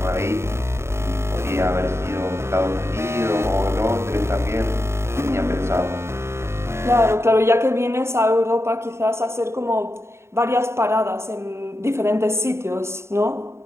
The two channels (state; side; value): late; left; 0.13 ms